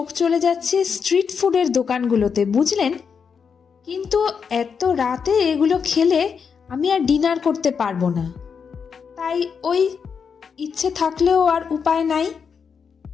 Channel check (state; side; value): quieter; right; 6.3 dB